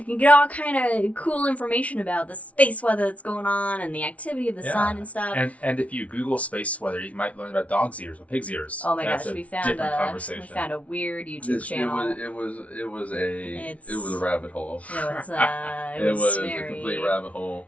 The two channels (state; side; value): late; right; 0.066 ms